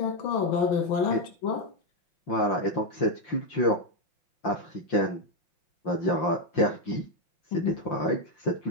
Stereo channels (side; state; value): right; late; 5.7 ms